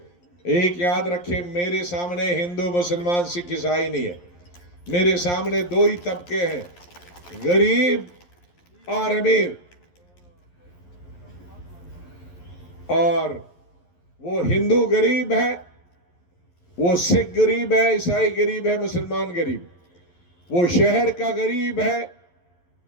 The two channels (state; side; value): late; right; 11 ms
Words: एक याद रखें, मेरे सामने हिंदू मुसलमान सिख ईसाई नहीं है, मेरे सामने दो ही तबके हैं, गरीब और अमीर। और वो हिंदू गरीब है, वो सिख गरीब है, ईसाई गरीब है, मुसलमान गरीब, वो शहर का गरीब है,